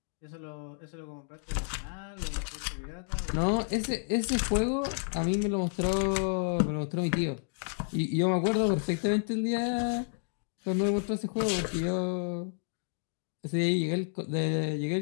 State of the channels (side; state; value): right; silent; 57 dB below the other